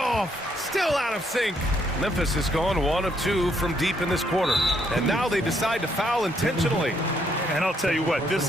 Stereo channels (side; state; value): both; normal; correlation 0.72